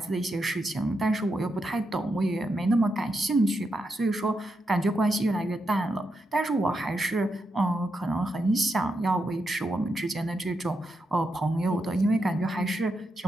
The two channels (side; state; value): both; normal; correlation 0.84